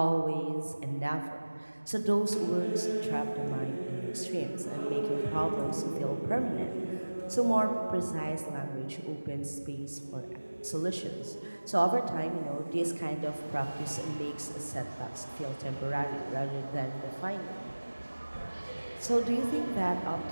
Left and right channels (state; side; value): inverted; both; correlation -1.00